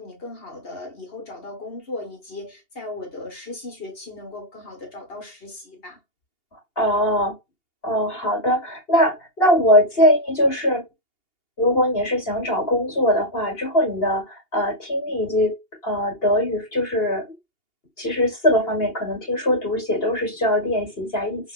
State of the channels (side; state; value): right; late; 2.8 ms